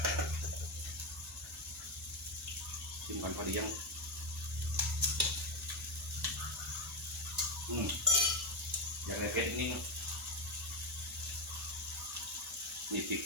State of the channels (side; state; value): both; normal; correlation 0.09